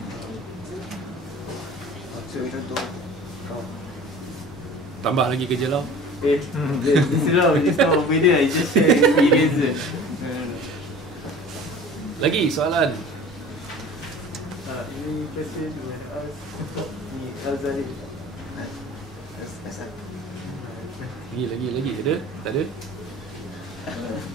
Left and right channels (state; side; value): normal; both; correlation 0.42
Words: So contoh Tambah lagi kerja Lau. This is not beda, I just share experience. Lagi soalan. Ini question you want to ask ni Zarif. Lagi ada? Tak ada?